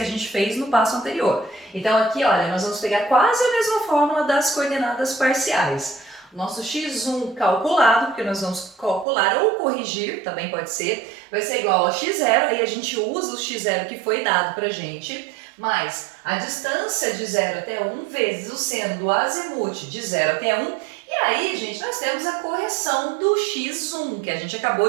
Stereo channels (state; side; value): drops out; left; at 9.1 s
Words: a gente fez no passo anterior. Então aqui, olha, nós vamos pegar quase a mesma fórmula das coordenadas parciais. O nosso x1 calculado, porque nós vamos calcular ou corrigir, também pode ser, vai ser igual a x0, aí a gente usa o x0 que foi dado pra gente, mais a distância de 0 até 1 vezes o seno do azimuth de 0 até 1. E aí, gente, nós temos a correção do x1, que a gente